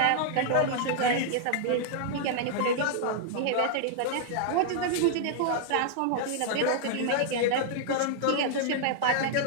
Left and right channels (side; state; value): both; different; correlation -0.01